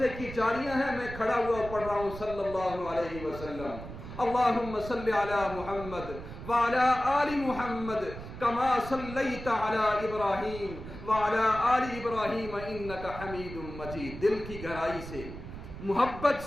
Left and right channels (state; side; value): noise; right; rumble, 11 dB below the sound